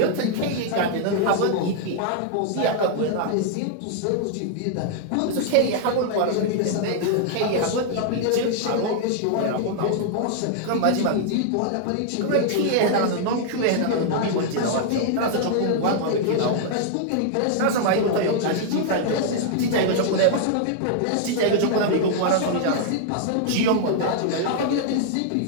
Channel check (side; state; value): both; different; correlation -0.01